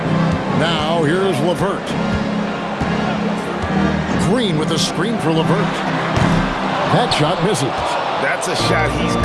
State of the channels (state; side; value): identical; both; correlation 1.00